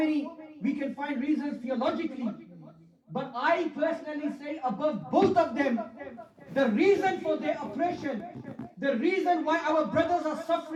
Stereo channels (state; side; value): identical; both; correlation 1.00